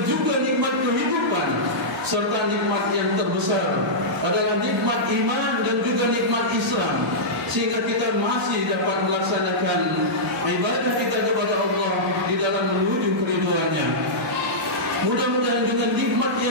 juga nikmat kehidupan, serta nikmat yang terbesar adalah nikmat iman dan juga nikmat Islam, sehingga kita masih dapat melaksanakan ibadah kita kepada Allah di dalam menuju keridhaan-Nya. Mudah-mudahan dengan nikmat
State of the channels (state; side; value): normal; both; correlation -0.12